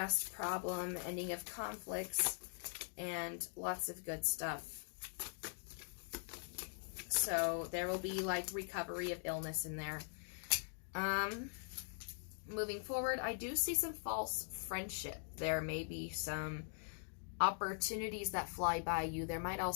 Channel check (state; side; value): silent; right; digital silence